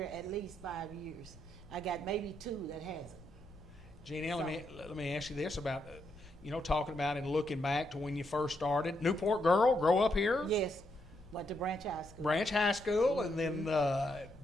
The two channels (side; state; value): left; noise; rumble, 21 dB below the sound